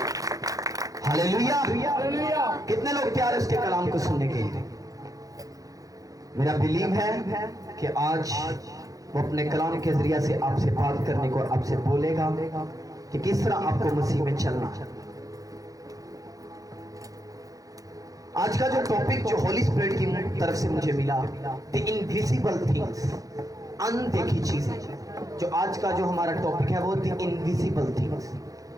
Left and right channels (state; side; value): late; left; 0.17 ms